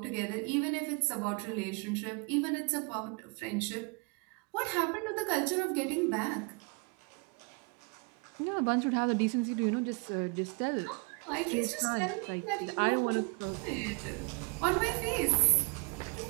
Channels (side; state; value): left; quieter; 32.2 dB